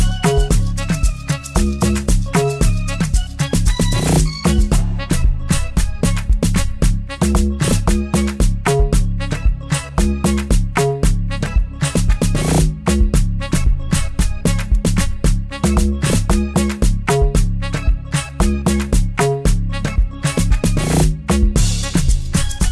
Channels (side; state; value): both; identical; correlation 1.00